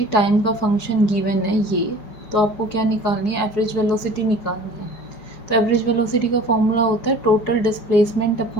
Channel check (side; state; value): right; late; 4.7 ms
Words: टाइम का फंक्शन गिवन है ये, तो आपको क्या निकालनी है, एवरेज वेलोसिटी निकालनी है। तो एवरेज वेलोसिटी का फॉर्मूला होता है total displacement